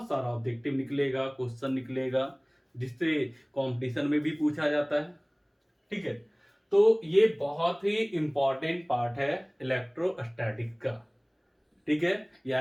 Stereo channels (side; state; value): both; identical; correlation 1.00